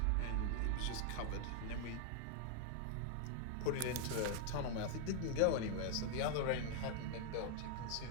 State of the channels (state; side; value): different; both; correlation 0.00